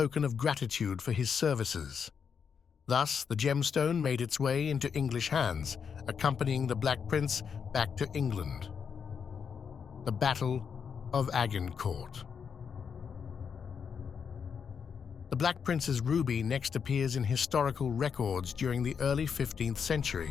of gratitude for his services. Thus, the gemstone made its way into English hands, accompanying the Black Prince back to England. The Battle of Agincourt. The Black Prince's ruby next appears in historical records during the early 15th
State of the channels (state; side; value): quieter; right; 6.7 dB